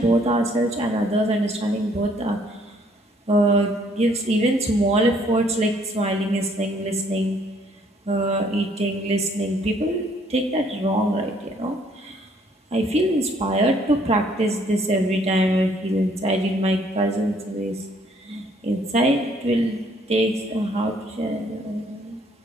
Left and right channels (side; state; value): both; normal; correlation 0.63